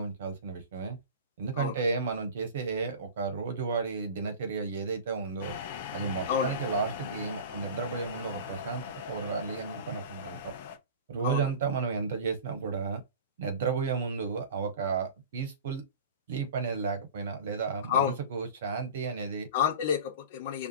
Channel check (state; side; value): inverted; both; correlation -0.35